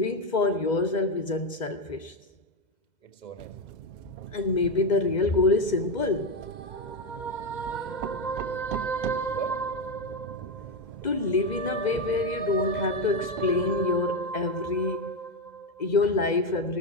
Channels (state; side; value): late; right; 2.0 ms